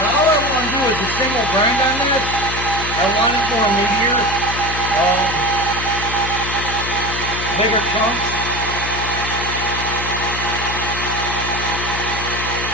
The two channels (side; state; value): left; noise; hum, 7 dB below the sound